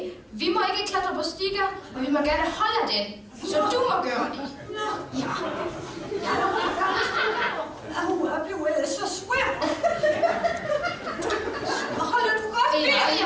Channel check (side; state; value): both; identical; correlation 1.00